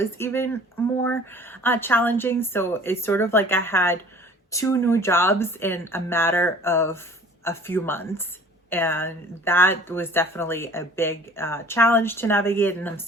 even more challenging. So it's sort of like I had two new jobs in a matter of a few months. And that was definitely a big challenge to navigate. And I'm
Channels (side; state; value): both; normal; correlation 0.49